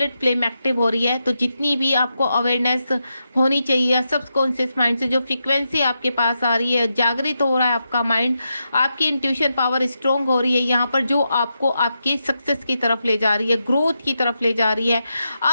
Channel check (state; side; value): inverted; both; correlation -0.86